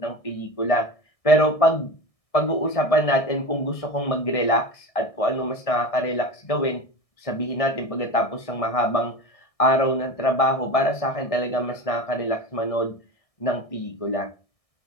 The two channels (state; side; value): late; right; 1.6 ms